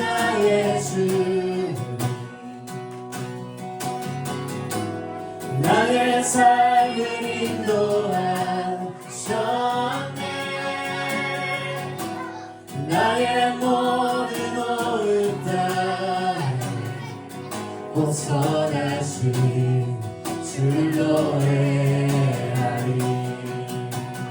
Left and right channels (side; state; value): both; identical; correlation 1.00